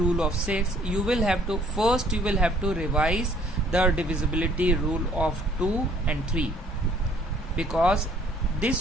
of 6, you will have to revise the divisibility rule of 2 and 3, because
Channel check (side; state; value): both; normal; correlation 0.60